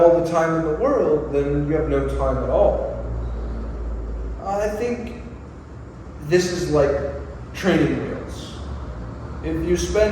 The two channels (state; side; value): identical; both; correlation 1.00